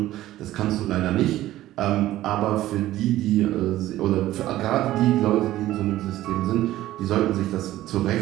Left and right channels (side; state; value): left; quieter; 14.8 dB